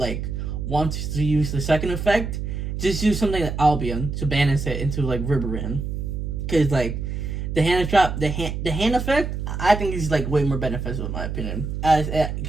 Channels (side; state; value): right; noise; hum, 4 dB below the sound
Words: want to use the second effect, just use something like Albion to banish it into like Riverwind. Because like the hand trap, the hand effect, I think is like way more beneficial in my opinion, as it